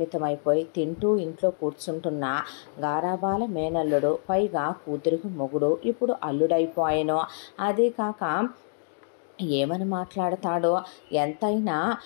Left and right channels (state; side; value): silent; right; digital silence